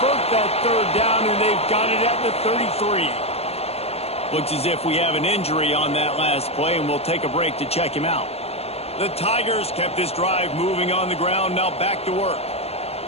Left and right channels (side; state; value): right; late; 0.29 ms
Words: that 3rd down, and they've got it at the 33. Looks as if we have an injury on that last play, and we'll take a break to check him out. The Tigers kept this drive moving on the ground. Now back to work.